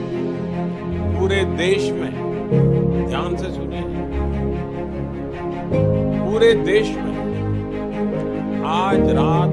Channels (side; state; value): both; identical; correlation 1.00